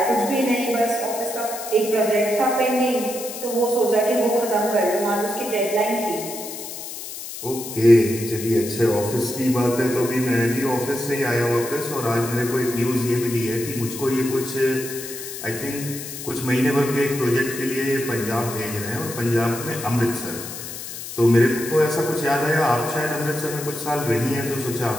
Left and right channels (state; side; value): noise; left; hiss, 9 dB below the sound